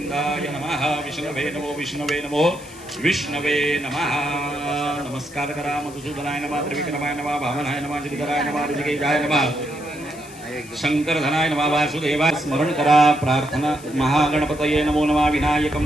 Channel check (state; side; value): noise; left; hiss, 19 dB below the sound